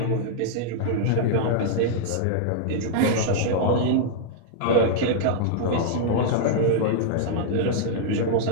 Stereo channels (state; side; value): different; both; correlation -0.01